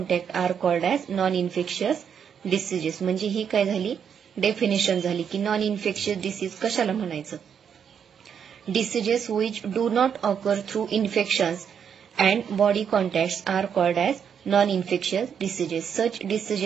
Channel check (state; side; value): quieter; left; 7.7 dB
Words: are called as non infectious diseases. म्हणजे ही काय झाली, डेफिनेशन झाली की नॉन इन्फेक्शियस डिसीज कशाला म्हणायचं. Diseases which do not occur through infections and body contacts are called as non-infectious diseases. Such